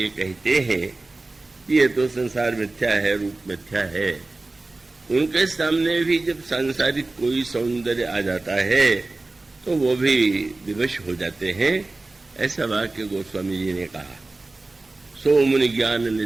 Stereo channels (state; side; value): quieter; left; 3.2 dB